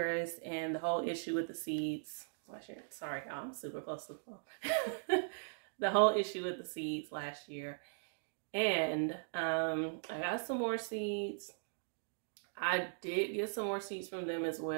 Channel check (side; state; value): left; silent; digital silence